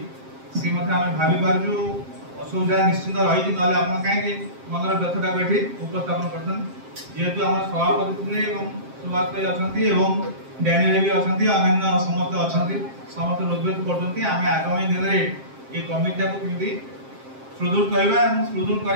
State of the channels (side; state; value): left; late; 7.5 ms